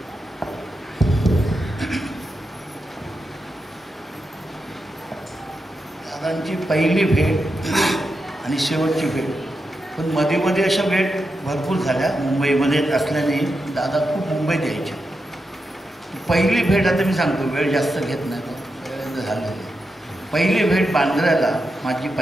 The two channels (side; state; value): both; normal; correlation 0.87